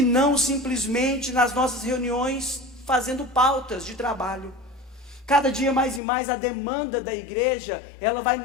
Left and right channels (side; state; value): right; drops out; at 6.0 s